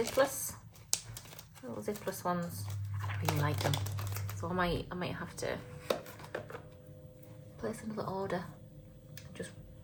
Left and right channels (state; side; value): identical; both; correlation 1.00